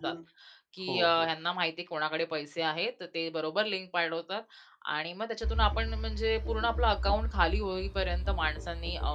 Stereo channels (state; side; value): identical; both; correlation 1.00